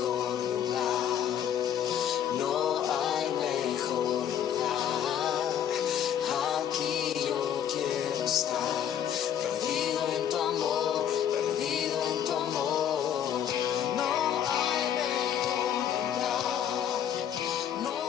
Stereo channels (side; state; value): right; quieter; 9.5 dB